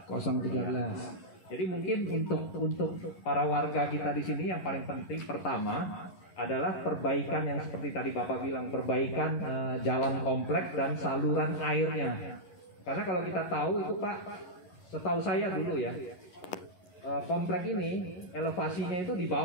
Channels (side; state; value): right; late; 11 ms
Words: 013. Jadi mungkin untuk para warga kita di sini yang paling penting pertama adalah perbaikan yang seperti tadi Bapak bilang, perbaikan jalan kompleks dan saluran airnya. Karena kalau kita tahu itu Pak, setahu saya dulu ya, komplek ini elevasinya itu di